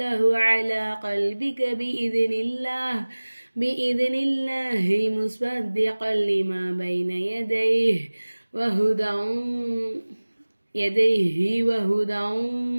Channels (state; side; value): inverted; both; correlation -1.00